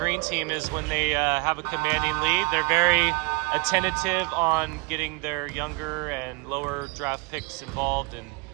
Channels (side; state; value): left; quieter; 28.7 dB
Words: team is when they have a commanding lead, they're very attentive on getting their younger and lower draft picks involved and